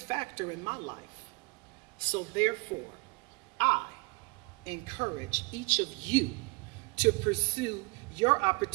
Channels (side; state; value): left; quieter; 28.8 dB